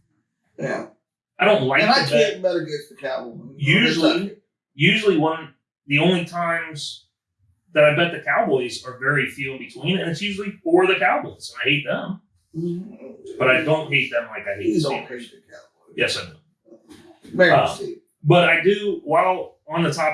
Yeah. I don't like and to I can't bet against the Cowboys. Usually the only times that I bet the Cowboys are very few in between, and it's usually for the Cowboys, and I hate them. Mm-hmm. But I don't hate them like I hate the Steelers. Yes, I do. But I do, while on the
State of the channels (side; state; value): both; identical; correlation 1.00